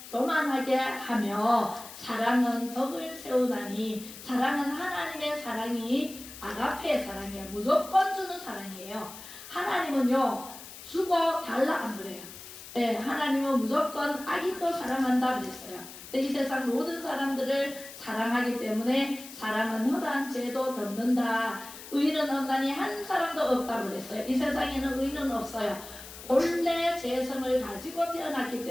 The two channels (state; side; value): noise; left; hiss, 14 dB below the sound